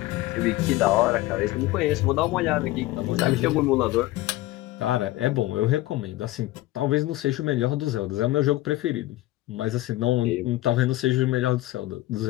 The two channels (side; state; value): right; quieter; 17.1 dB